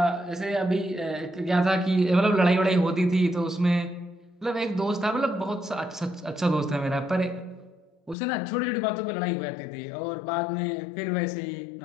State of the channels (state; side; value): drops out; right; at 8.2 s